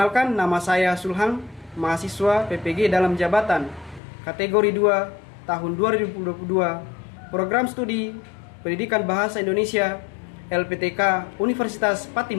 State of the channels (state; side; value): drops out; right; at 4.0 s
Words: nama saya Sulhang, mahasiswa PPG dalam jabatan kategori 2 tahun 2022, program studi Pendidikan Bahasa Indonesia LPTK Universitas